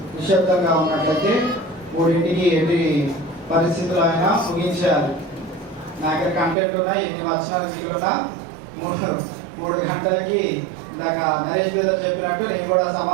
నిశ్శబ్దంగా ఉన్నట్లయితే 3ంటికి ఎన్ని పరిస్థితులు అయినా ముగించేయాలి. నా దగ్గర కంటెంట్ ఉన్నాయి, ఎన్ని వచనాలు మిగిలినా 3 గంటలకి ఇందాక నరేష్ బ్రదర్ చెప్పినట్టు నేను కూడా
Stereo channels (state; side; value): drops out; left; at 6.6 s